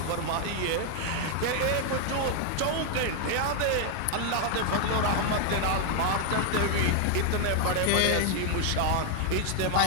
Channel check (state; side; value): different; both; correlation 0.00